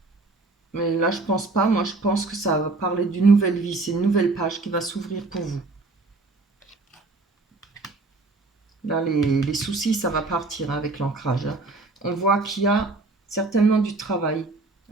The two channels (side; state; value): left; quieter; 3.4 dB